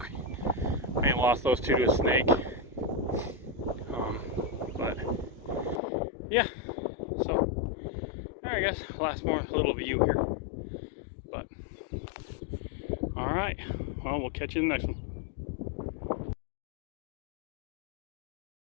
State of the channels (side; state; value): right; drops out; at 5.8 s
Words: we may have lost those 2 to a snake. But yeah, so I guess last more little view here. But all right, well, we'll catch you in the next one.